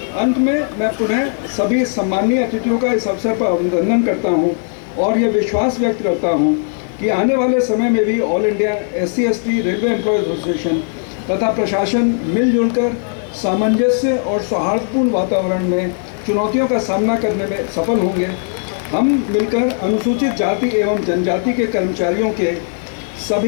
अंत में मैं पुनः सभी सम्मानीय अतिथियों का इस अवसर पर अभिनंदन करता हूं और ये विश्वास व्यक्त करता हूं कि आने वाले समय में भी all India SC/ST railway employees association तथा प्रशासन मिलजुल कर सामंजस्य और सौहार्दपूर्ण वातावरण में चुनौतियों का सामना करने में सफल होंगे। हम मिलकर अनुसूचित जाति एवं जनजाति के कर्मचारियों के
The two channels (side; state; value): right; silent; 58 dB below the other